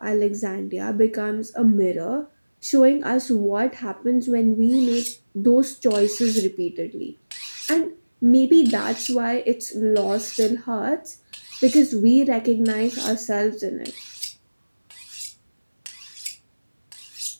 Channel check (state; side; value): inverted; both; correlation -1.00